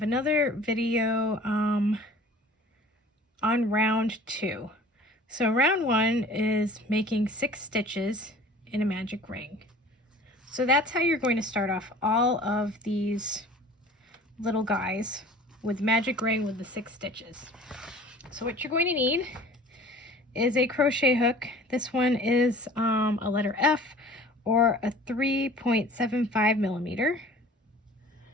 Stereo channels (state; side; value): normal; both; correlation 0.46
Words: another video on round 2. So round 1 is making 6 stitches in a magic ring. So that's how you're going to start off all of these little guys with magic ring with the 6 stitches. So what you're going to need is a crochet hook. This one is a letter F or a 3.75 millimeter.